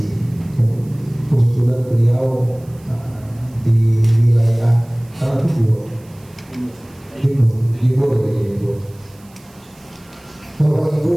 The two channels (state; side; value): noise; right; hiss, 28 dB below the sound